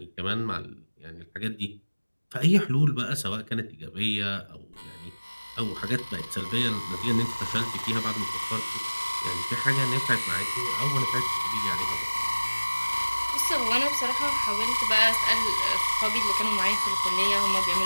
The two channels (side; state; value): both; inverted; correlation -1.00